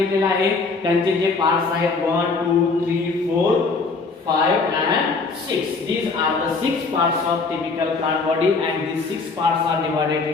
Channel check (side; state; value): right; quieter; 4.2 dB